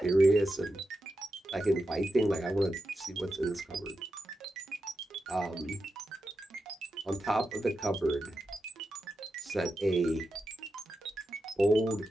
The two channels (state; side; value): normal; both; correlation 0.89